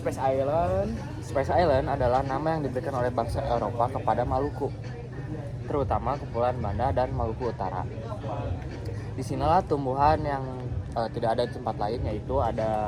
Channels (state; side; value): identical; both; correlation 1.00